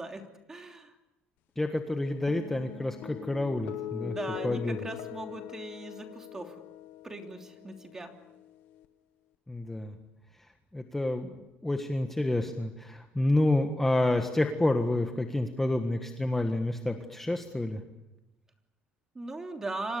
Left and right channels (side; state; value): both; normal; correlation 0.92